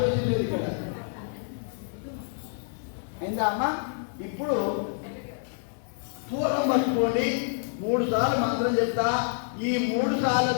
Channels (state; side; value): silent; right; digital silence